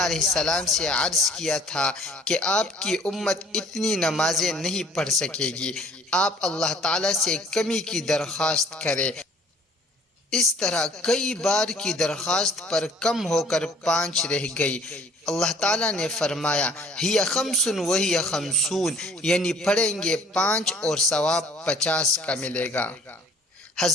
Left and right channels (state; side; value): normal; both; correlation 0.55